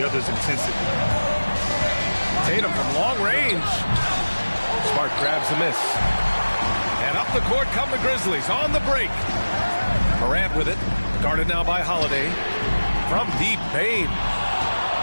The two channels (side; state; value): both; inverted; correlation -1.00